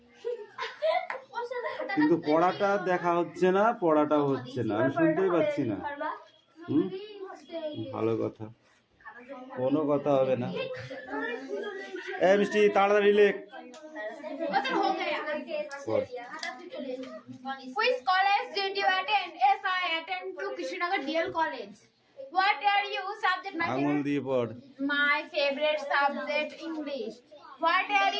কিন্তু পড়াটা দেখা হচ্ছে না, পড়াটাও হচ্ছে না, আমি শুনতেই পাচ্ছি না। হুম, ভালো কথা, কোনো কথা হবে না। এই মিষ্টি তাড়াতাড়ি লেখ। পড়। Which college did you attend? Yes, I attend to Krishnagar DL College. What are you subject? আঙুল দিয়ে পড়। My favorite subject English. What are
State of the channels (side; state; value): both; identical; correlation 1.00